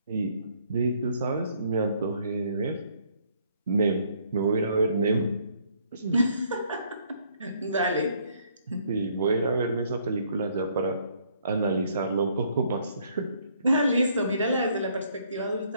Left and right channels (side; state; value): both; inverted; correlation -0.66